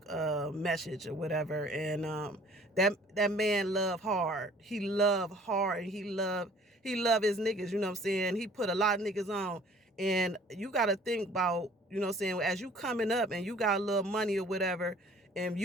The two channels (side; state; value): both; normal; correlation 0.53